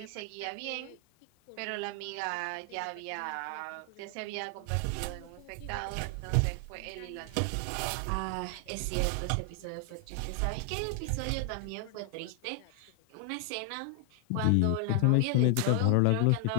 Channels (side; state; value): both; different; correlation 0.00